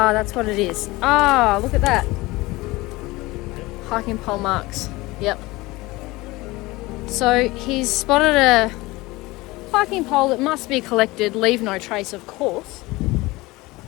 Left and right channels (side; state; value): right; quieter; 20.9 dB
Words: that's what it is. Ah, look at that. Hiking pole marks. Yep. So he's spotted a hiking pole that must be collected, leave no trace, of course.